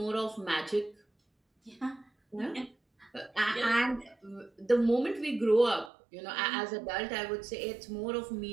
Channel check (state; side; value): drops out; left; at 5.9 s